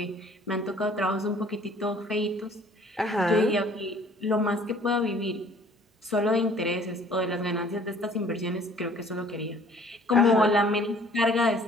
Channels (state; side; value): normal; both; correlation 0.55